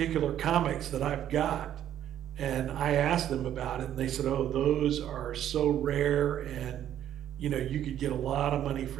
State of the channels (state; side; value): quieter; left; 11.0 dB